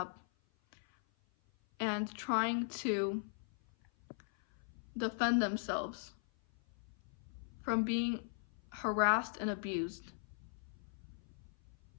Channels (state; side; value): silent; right; 51 dB below the other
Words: and trying to defend themselves from being harassed and abused